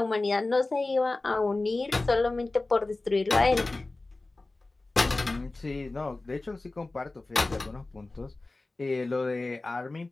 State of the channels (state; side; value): quieter; right; 3.1 dB